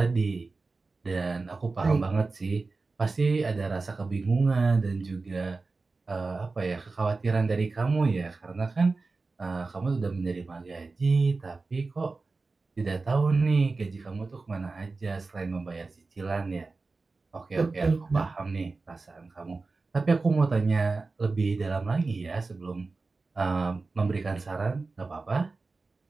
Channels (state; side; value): quieter; left; 3.8 dB